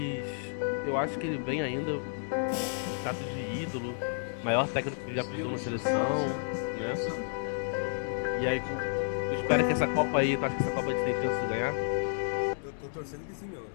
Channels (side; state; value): right; silent; digital silence